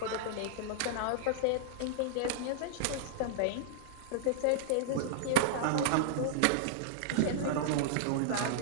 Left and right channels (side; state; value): both; different; correlation -0.01